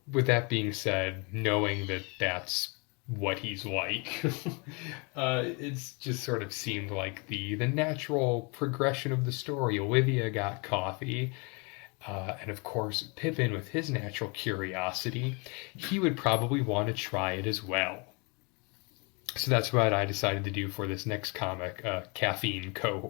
with that being said, knowing that that's what he's like, it's just sort of seemed like the natural progression of the story. Olivia got coffee. And of course, Pippin, with his natural curiosity, he would probably want to try it as well. So that's what I decided to do for this next comic, coffee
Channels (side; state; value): right; quieter; 31.6 dB